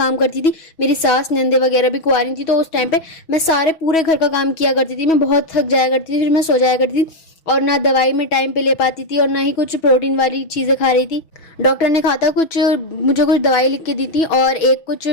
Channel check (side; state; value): right; late; 6.2 ms